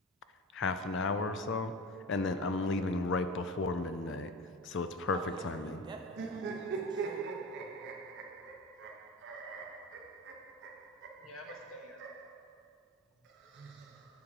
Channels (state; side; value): normal; both; correlation 0.31